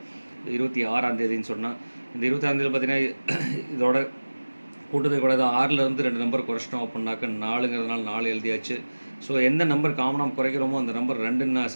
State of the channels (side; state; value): both; inverted; correlation -1.00